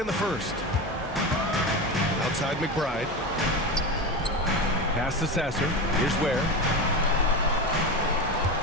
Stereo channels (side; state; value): both; normal; correlation 0.22